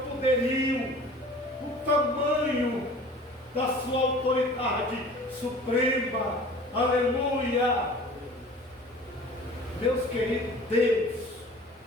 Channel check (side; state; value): both; normal; correlation 0.45